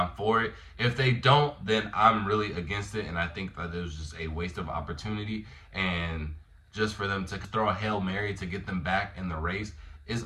for it. If they don't, then I'm really against it, and I think that it was just a waste of opportunity, and just for them to throw a Hail Mary to get them back in the race is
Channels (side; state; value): both; identical; correlation 1.00